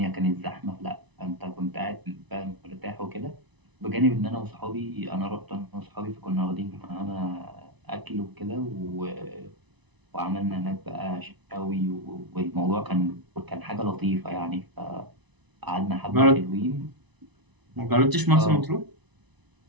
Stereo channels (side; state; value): left; late; 1.0 ms